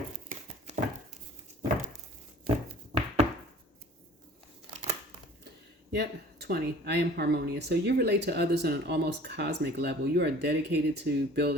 Yep, 20. I am harmonious. So you relate to others on an almost cosmic level. You are dedicated to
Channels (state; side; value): normal; both; correlation 0.48